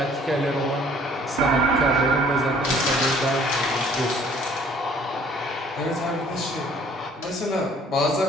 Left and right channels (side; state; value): both; normal; correlation 0.56